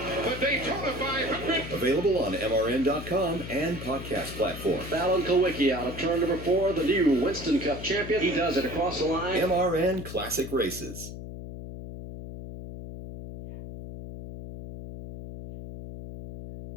the Daytona 500. Available on MRN.com and podcast platforms. Alan Kowicki out of turn number 4, the new Winston Cup champion. He does it across the line. MRN Classic Races.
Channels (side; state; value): left; noise; hum, 10 dB below the sound